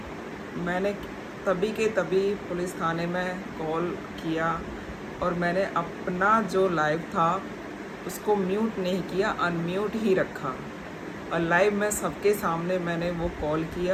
मैंने तभी के तभी पुलिस थाने में कॉल किया और मैंने अपना जो लाइव था उसको म्यूट नहीं किया, अनम्यूट ही रखा, और लाइव में सबके सामने मैंने वो कॉल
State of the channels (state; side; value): identical; both; correlation 1.00